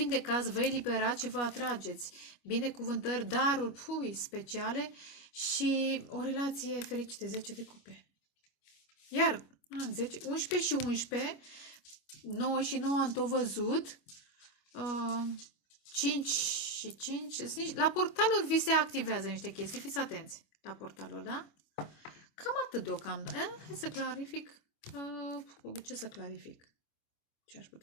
vă eliberați și vă atrageți binecuvântări, daruri speciale și o relație fericită, 10 de cupe. Iar 10, 11 și 11, 9 și 9 am tot văzut, 5 și 5, la portaluri vi se activează niște chestii, fiți atenți la portaluri, da? Cam atât deocamdată. Hai să clarific. Ce să clarific? Ce aș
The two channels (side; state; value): right; late; 25 ms